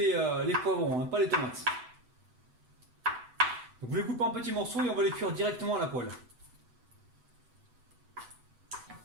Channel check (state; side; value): late; left; 7.9 ms